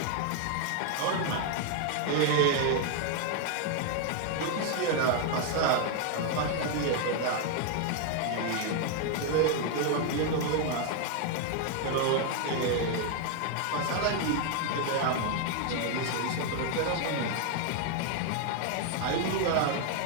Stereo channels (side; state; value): both; different; correlation 0.00